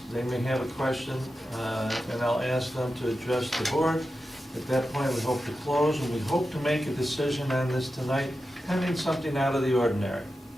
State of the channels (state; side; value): normal; both; correlation 0.91